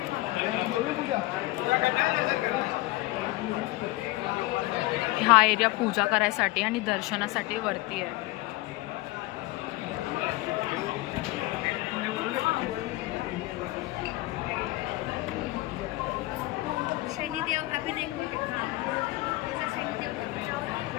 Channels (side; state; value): right; quieter; 19.7 dB